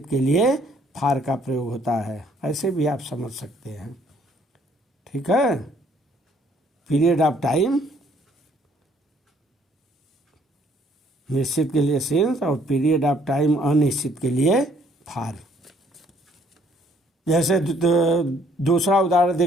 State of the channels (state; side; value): normal; both; correlation 0.63